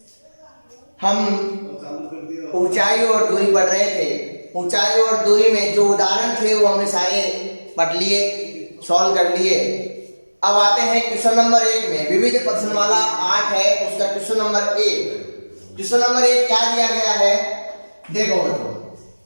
हम ऊंचाई और दूरी पढ़ रहे थे। ऊंचाई और दूरी में जो उदाहरण थे वो हमने सारे पढ़ लिए, सॉल्व कर लिए। अब आते हैं क्वेश्चन नंबर 1 में। विविध प्रश्नमाला 8 है, उसका क्वेश्चन नंबर 1। क्वेश्चन नंबर 1 क्या दिया गया है, देखो बच्चों।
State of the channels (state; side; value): inverted; both; correlation -1.00